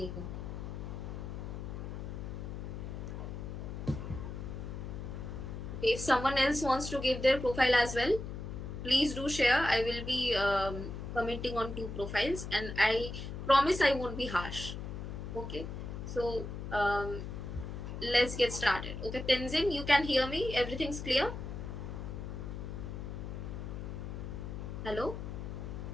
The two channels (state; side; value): noise; left; hum, 7 dB below the sound